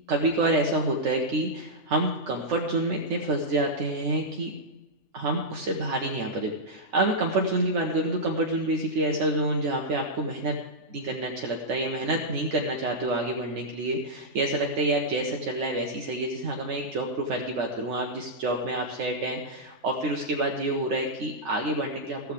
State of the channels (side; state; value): left; late; 3.4 ms